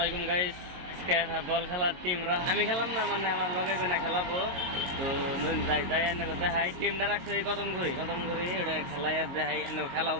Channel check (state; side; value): late; left; 22 ms